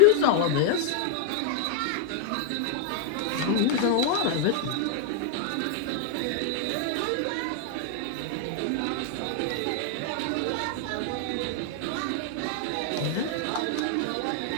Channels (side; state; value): both; different; correlation 0.00